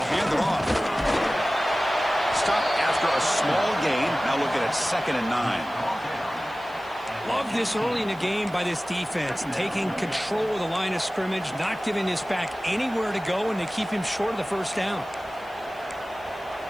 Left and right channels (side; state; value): right; noise; hiss, 28 dB below the sound